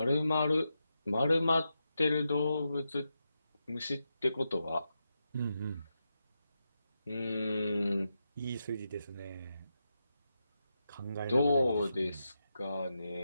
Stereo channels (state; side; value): inverted; both; correlation -0.87